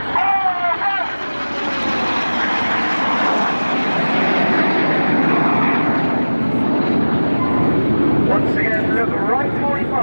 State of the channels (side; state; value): both; inverted; correlation -1.00